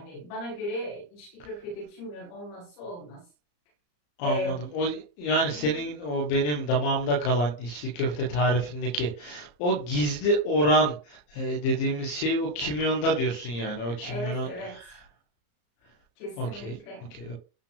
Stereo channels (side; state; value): right; late; 34 ms